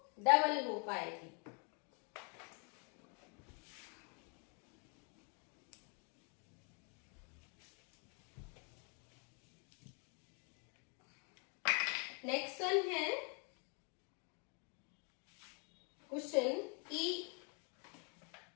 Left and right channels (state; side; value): quieter; right; 36.9 dB